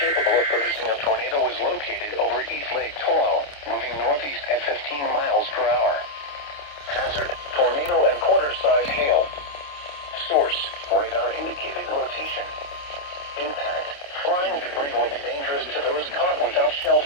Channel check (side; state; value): right; late; 28 ms